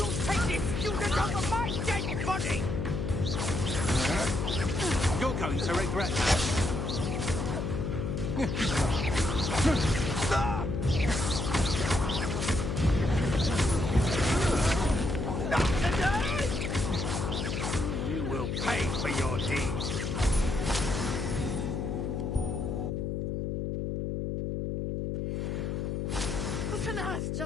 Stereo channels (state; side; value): noise; left; hum, 1 dB below the sound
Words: take this student over my dead body! You're going to regret that. You will pay for your deeds. What on earth